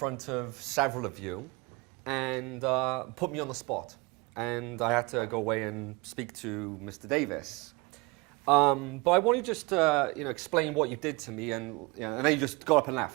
of several of you and put me on the spot. And I had to go away and speak to Mr. Davis. But I want you just to explain what you did to me, and then you just got up and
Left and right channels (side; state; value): left; quieter; 25.9 dB